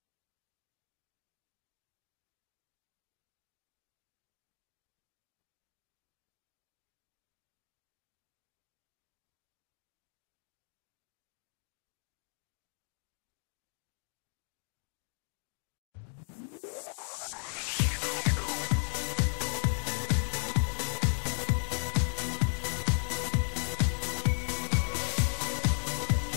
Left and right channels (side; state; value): right; silent; 54 dB below the other